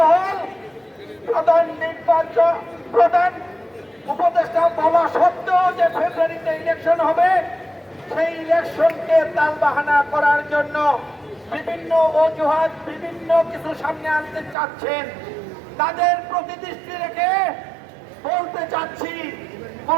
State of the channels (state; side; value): drops out; left; at 14.6 s